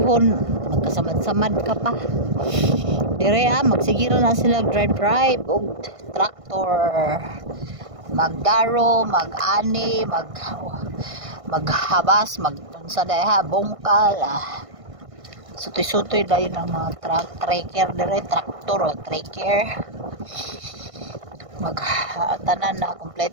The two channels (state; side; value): late; left; 1.5 ms